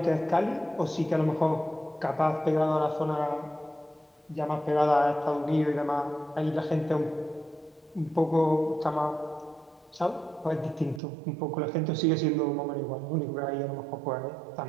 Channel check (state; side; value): drops out; left; at 11.0 s